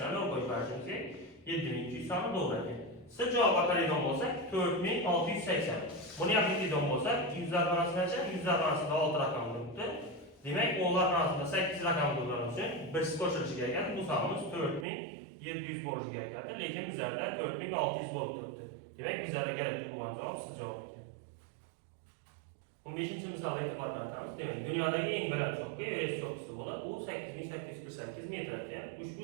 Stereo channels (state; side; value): drops out; left; at 14.9 s